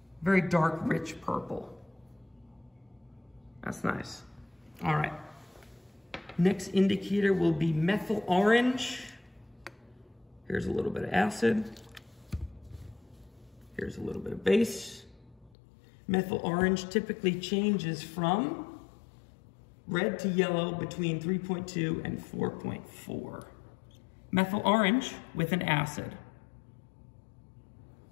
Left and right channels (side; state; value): right; drops out; at 15.6 s